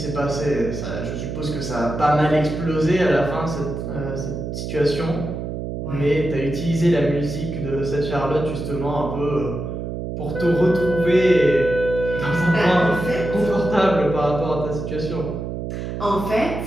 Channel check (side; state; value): right; noise; hum, 5 dB below the sound